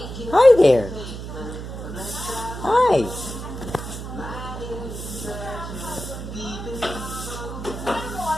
Hi there. Hi.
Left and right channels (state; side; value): noise; right; hum, 8 dB below the sound